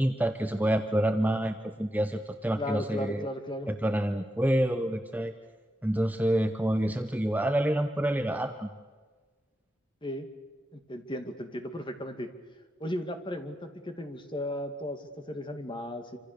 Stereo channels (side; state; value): both; normal; correlation 0.87